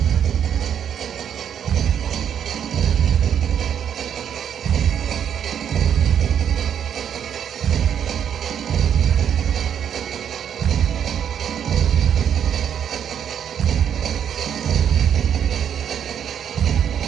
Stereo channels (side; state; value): left; quieter; 8.8 dB